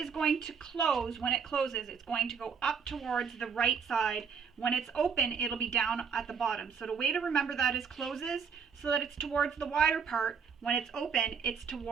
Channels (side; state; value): left; quieter; 6.3 dB